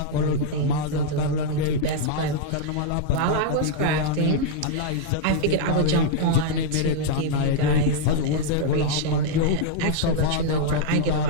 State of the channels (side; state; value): both; different; correlation -0.01